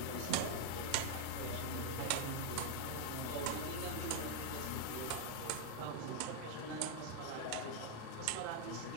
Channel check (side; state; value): both; different; correlation 0.00